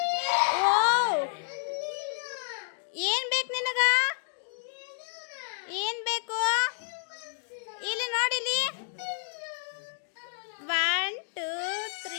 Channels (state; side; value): silent; right; digital silence